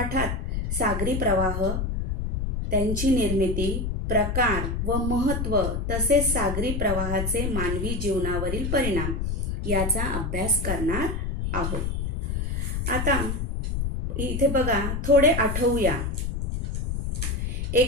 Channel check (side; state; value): left; noise; rumble, 1 dB below the sound